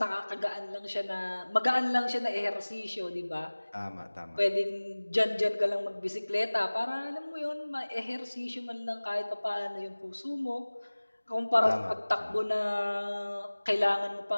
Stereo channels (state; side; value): inverted; both; correlation -1.00